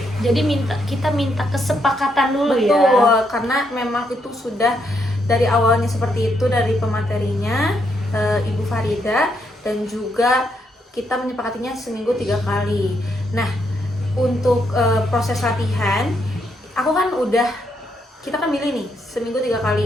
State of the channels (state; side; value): normal; both; correlation 0.77